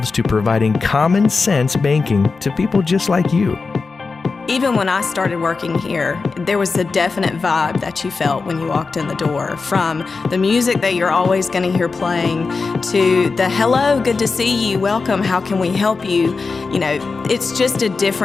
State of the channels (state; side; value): quieter; right; 4.4 dB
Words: to providing common sense banking to people just like you. Even when I started working here, there was a definite vibe that you felt when you walked in the door, from the music that you're always going to hear playing to the hello, good to see you, welcome, how can we help you? You know, it's just a